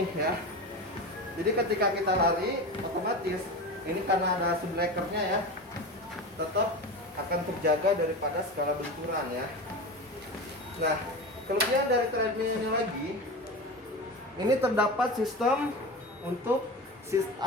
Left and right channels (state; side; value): normal; both; correlation 0.26